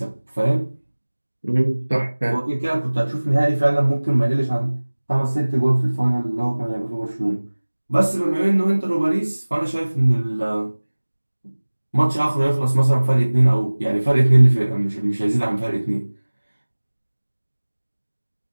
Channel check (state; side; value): inverted; both; correlation -1.00